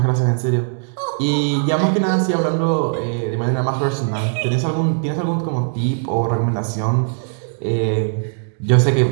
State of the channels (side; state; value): left; silent; digital silence